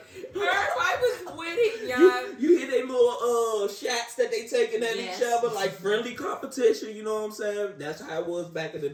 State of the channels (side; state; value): both; identical; correlation 1.00